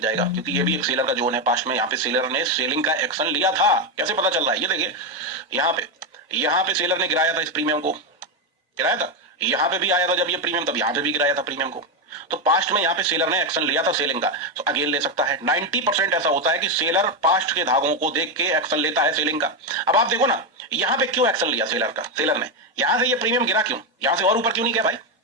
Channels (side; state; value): both; normal; correlation 0.07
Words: जाएगा, क्योंकि ये भी एक सेलर का जोन है पास्ट में। यहाँ पे सेलर ने सेलिंग का एक्शन लिया था। कैसे पता चल रहा है? ये देखिए यहाँ पे सेलर ने गिराया था, इस प्रीमियम को गिराया था। यहाँ पे भी आया था जब ये प्रीमियम, तब यहाँ पे भी गिराया था प्रीमियम को। तो पास्ट में यहाँ पे सेलर ने एक्शन लिया था सेलिंग का, तो अगेन ले सकता है। 90% ऐसा होता है कि सेलर पास्ट के धागों को देख के एक्शन लेता है सेलिंग का। अब आप देखो ना, यहाँ पे क्यों एक्शन लिया सेलर ने? यहाँ से ये प्रीमियम गिरा क्यों? यहाँ से और ऊपर क्यों नहीं गया भाई?